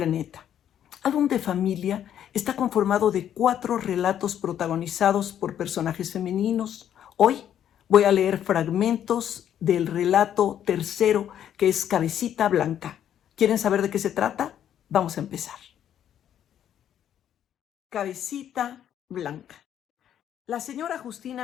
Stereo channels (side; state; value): right; quieter; 10.1 dB